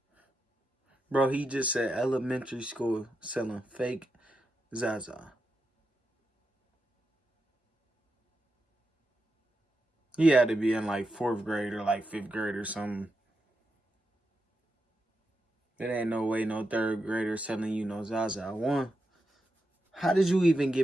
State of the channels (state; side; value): normal; both; correlation 0.86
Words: Bro, he just said elementary school selling fake Zaza. He had to be in like 4th grade or like 5th grade or something. There ain't no way no 3rd grader selling you no Zaza. One, how did you even